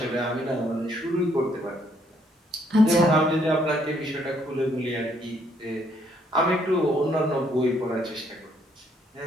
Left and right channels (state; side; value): normal; both; correlation 0.69